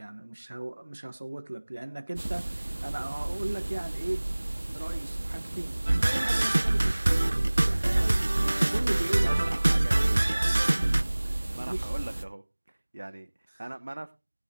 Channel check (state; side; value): inverted; both; correlation -1.00